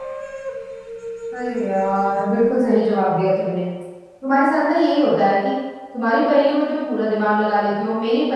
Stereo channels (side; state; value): both; identical; correlation 1.00